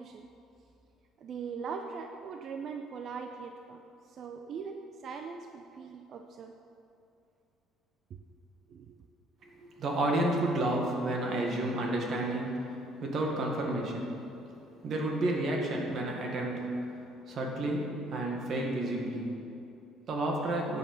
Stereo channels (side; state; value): both; normal; correlation 0.62